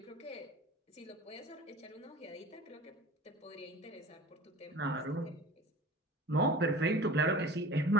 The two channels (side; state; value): both; normal; correlation 0.40